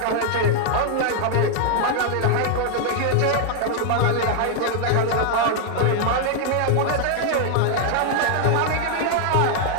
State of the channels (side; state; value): both; different; correlation 0.00